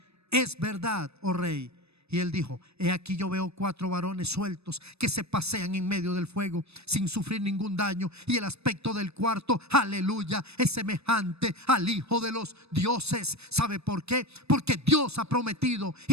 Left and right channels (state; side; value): late; left; 0.79 ms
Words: es verdad, oh rey. Y él dijo: he aquí yo veo 4 varones sueltos que se pasean en medio del fuego sin sufrir ningún daño, y el aspecto del cuarto, aleluya, es semejante al Hijo de los dioses. ¿Sabe por qué? Porque Dios ha prometido